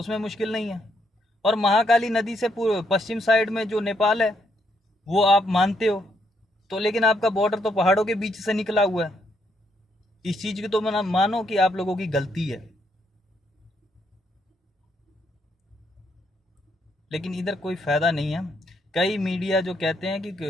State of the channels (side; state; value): both; normal; correlation 0.75